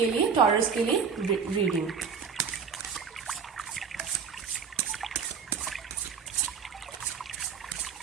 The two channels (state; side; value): quieter; left; 6.4 dB